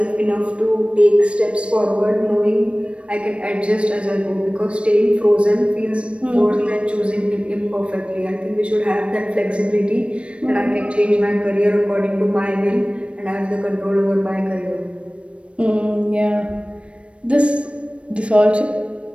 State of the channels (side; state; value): left; late; 0.061 ms